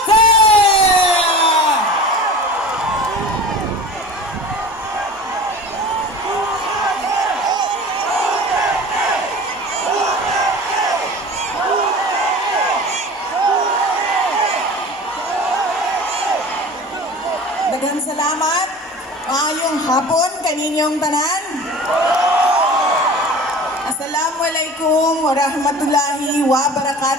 Daghang salamat. Maayong hapon kaninyong tanan. Assalamualaikum warahmatullahi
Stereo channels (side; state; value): both; normal; correlation 0.38